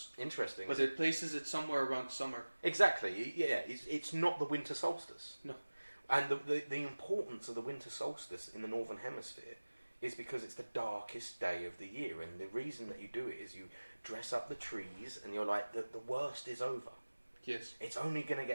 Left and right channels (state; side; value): inverted; both; correlation -1.00